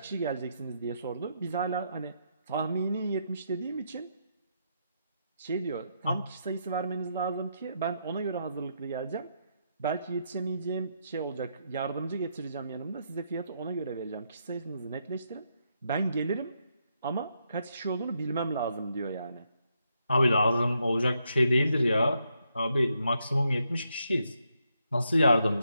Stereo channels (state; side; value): inverted; both; correlation -0.79